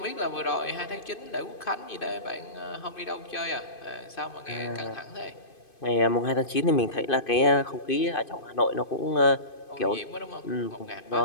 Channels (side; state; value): right; late; 2.5 ms